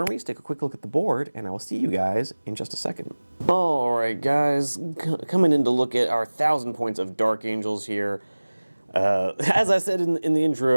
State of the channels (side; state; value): both; inverted; correlation -1.00